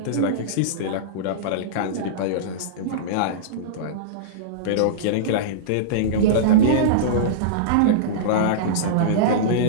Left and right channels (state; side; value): different; both; correlation -0.04